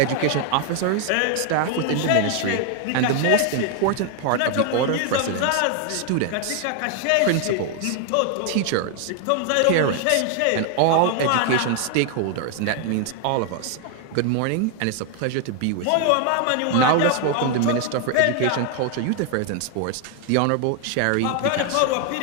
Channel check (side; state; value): both; different; correlation 0.00